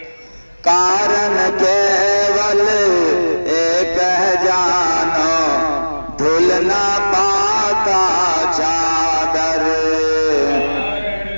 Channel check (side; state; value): both; inverted; correlation -1.00